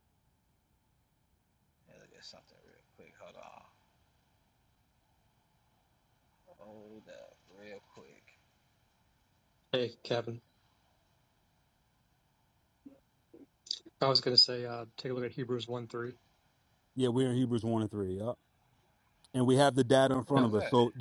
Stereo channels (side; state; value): both; identical; correlation 1.00